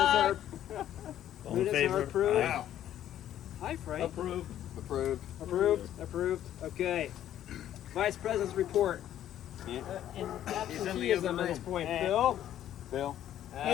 Minutes are approved. Wow. Hi, Frank. Approved. Approved. Okay. Vice President's report. And absenteeism at this point. Bill?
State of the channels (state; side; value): quieter; right; 11.5 dB